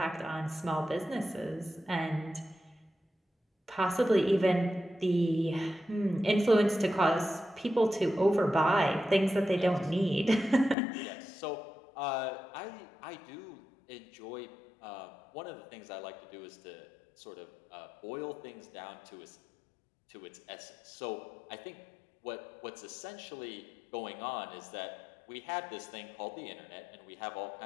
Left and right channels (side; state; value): right; drops out; at 10.8 s